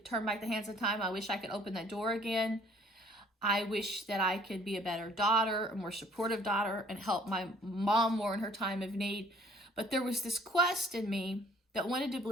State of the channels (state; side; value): normal; both; correlation 0.57